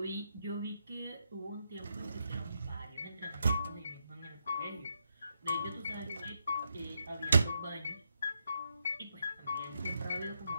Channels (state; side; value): inverted; both; correlation -0.81